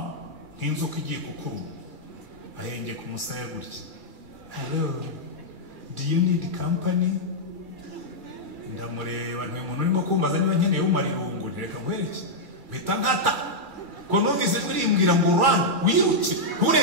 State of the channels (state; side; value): late; left; 2.3 ms